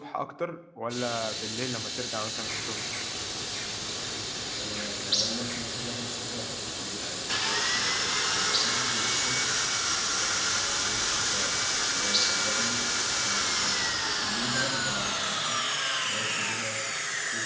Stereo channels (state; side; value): identical; both; correlation 1.00